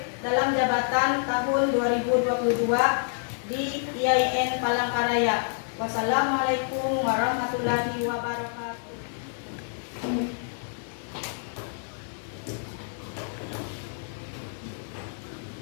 dalam jabatan tahun 2022 di IAIN Palangkaraya. Wassalamualaikum warahmatullahi wabarakatuh.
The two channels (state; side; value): silent; right; 57 dB below the other